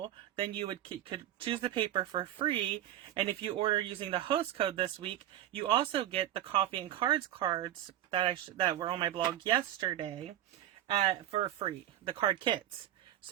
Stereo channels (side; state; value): left; quieter; 12.4 dB